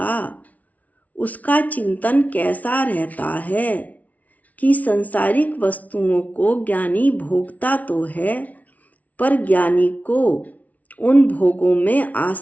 उसका चिंतन कैसा रहता है कि संसारिक वस्तुओं को ज्ञानी भोगता तो है, पर ज्ञानी को उन भोगों में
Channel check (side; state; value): right; late; 0.071 ms